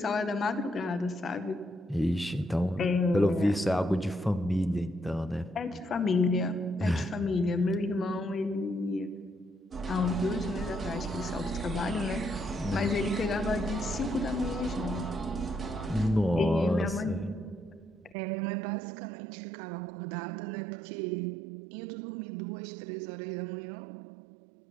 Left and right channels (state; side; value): drops out; left; at 18.2 s